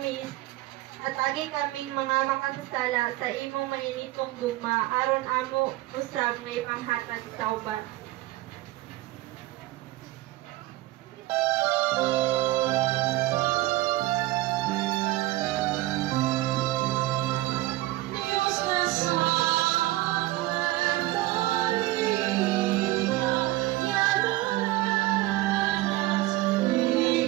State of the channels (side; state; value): left; quieter; 17.5 dB